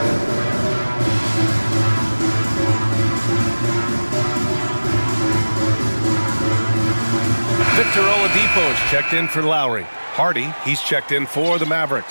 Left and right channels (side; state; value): both; inverted; correlation -1.00